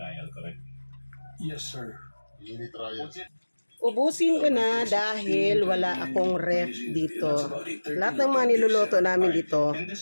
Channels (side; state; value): both; inverted; correlation -1.00